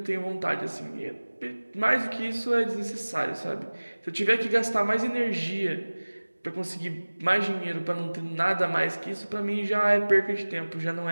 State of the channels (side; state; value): both; inverted; correlation -1.00